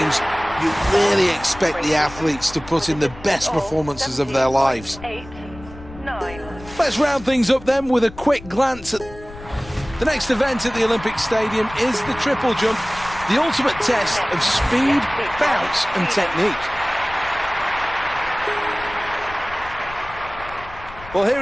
you really expect the athletes to put in the best performances of their lives. 8, 9. Let's round things up then with a quick glance at the next event at the Olympic Stadium is the triple jump, the ultimate test of speed, bounce and technique. Well,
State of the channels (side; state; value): left; noise; rumble, 17 dB below the sound